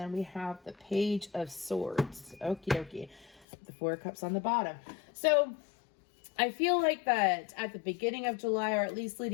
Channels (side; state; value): right; drops out; at 3.5 s